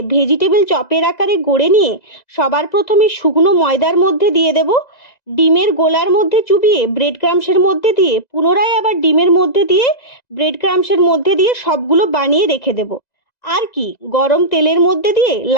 ভেজিটেবল চপের আকারে গড়ে নিয়ে সবার প্রথমে শুকনো ময়দার মধ্যে দিয়ে দেব। ডিমের গোলার মধ্যে চুবিয়ে ব্রেড ক্রামসের মধ্যে দিয়ে পুনরায় আবার ডিমের মধ্যে দিয়ে ব্রেড ক্রামসের মধ্যে দিয়ে সবগুলো বানিয়ে রেখে দেব। আর কি, গরম তেলের মধ্যে দিয়ে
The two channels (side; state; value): right; late; 2.0 ms